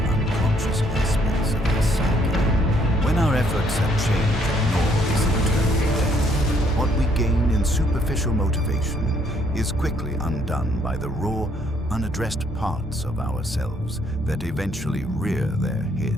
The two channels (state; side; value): normal; both; correlation 0.68